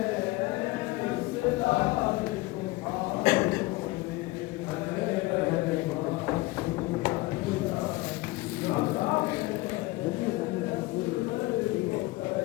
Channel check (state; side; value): quieter; right; 20.9 dB